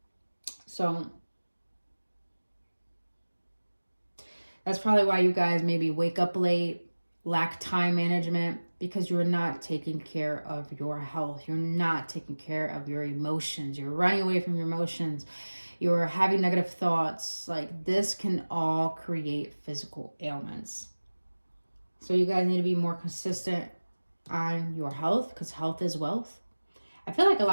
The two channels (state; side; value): inverted; both; correlation -1.00